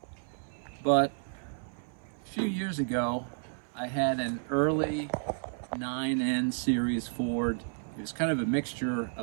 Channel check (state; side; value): silent; left; 57 dB below the other